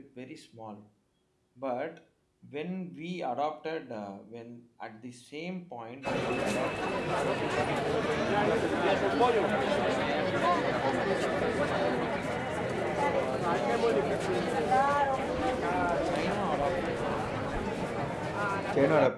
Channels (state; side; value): identical; both; correlation 1.00